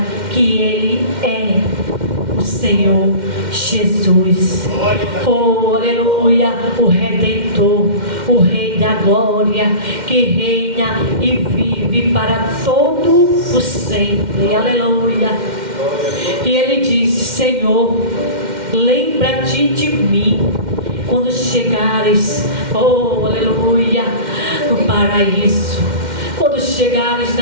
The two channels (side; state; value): left; late; 2.1 ms